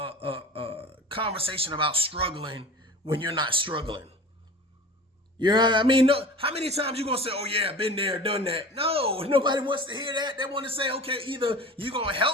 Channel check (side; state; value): both; normal; correlation 0.38